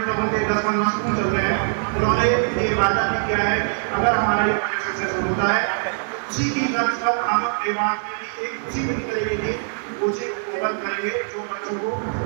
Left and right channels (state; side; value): silent; left; 64 dB below the other